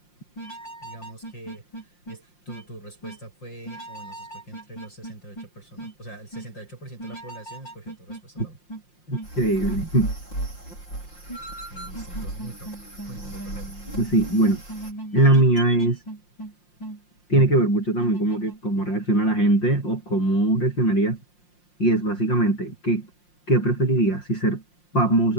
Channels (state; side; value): late; right; 5.7 ms